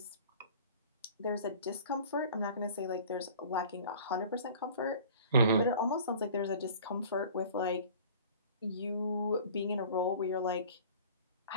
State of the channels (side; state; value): both; inverted; correlation -0.46